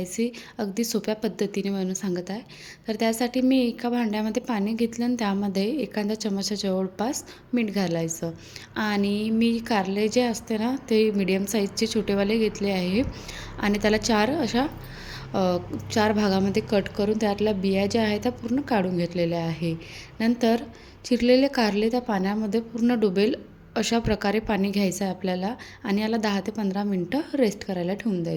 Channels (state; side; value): identical; both; correlation 1.00